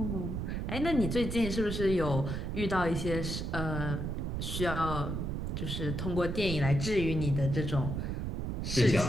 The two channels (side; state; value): right; noise; rumble, 3 dB below the sound